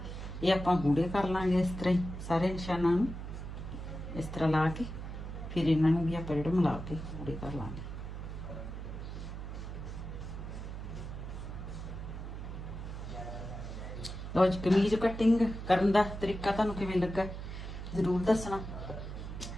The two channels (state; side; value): noise; right; hum, 8 dB below the sound